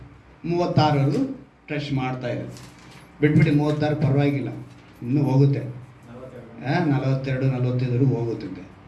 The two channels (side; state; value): both; identical; correlation 1.00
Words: 36 ಟಚ್ ಮಾಡ್ತಾ ಇದೆ. ಬಿಟ್ಬಿಟ್ಟು 36 ಪರವಾಗಿಲ್ಲ, ಇನ್ನೂ ಹೋಗುತ್ತೆ, 42 45 ಹೋಗುತ್ತಿದೆ.